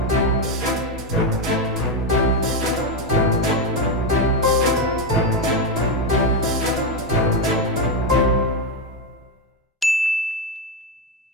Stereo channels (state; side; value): normal; both; correlation 0.08